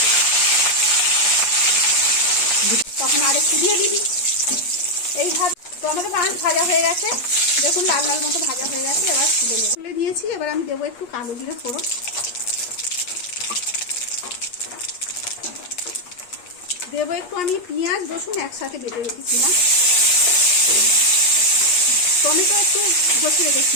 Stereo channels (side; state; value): right; late; 8.4 ms